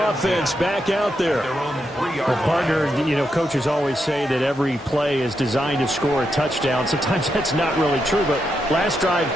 back out there. Well, partner, you know, coaches always say that every play is designed to score a touchdown. Sometimes that's not really true, but last drive,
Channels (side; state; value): both; normal; correlation 0.83